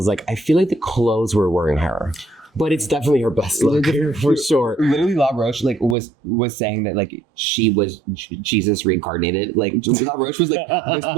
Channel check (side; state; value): left; drops out; at 6.0 s